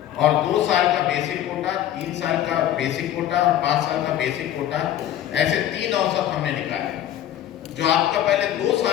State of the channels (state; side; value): quieter; right; 11.8 dB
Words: और 2 साल का बेसिक कोटा, 3 साल का बेसिक कोटा और 5 साल का बेसिक कोटा, ऐसे 3 औसत हमने निकाले। जो आपका पहले 2